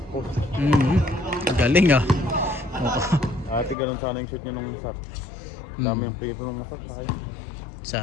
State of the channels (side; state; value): right; drops out; at 3.8 s